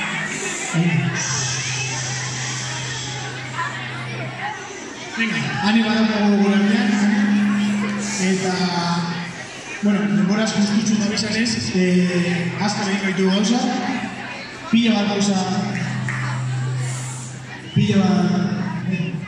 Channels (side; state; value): both; identical; correlation 1.00